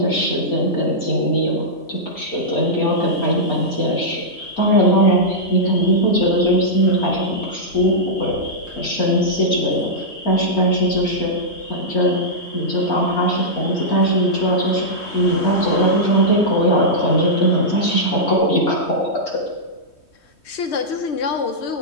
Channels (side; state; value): right; late; 3.2 ms